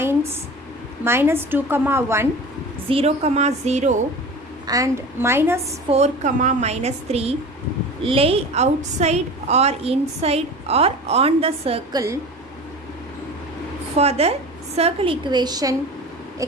minus 2 comma 1, 0 comma 0 and minus 4 comma minus 3 lay outside or inside or on the circle for the circle equation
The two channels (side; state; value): both; normal; correlation 0.35